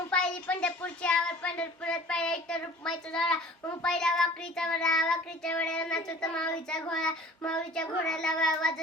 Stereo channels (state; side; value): normal; both; correlation 0.46